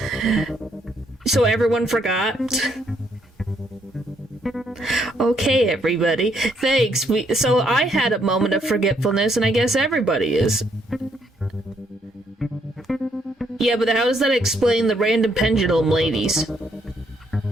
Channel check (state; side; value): normal; both; correlation 0.71